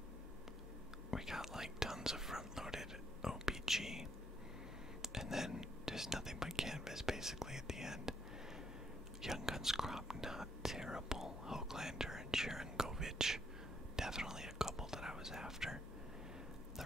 We got like tons of front-loaded OPG, and then just nothing but canvas basically at the end. Young Guns crop, not terrible. Hoaglander and Sharon Govich, definitely a couple that I was after. The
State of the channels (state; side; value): normal; both; correlation 0.73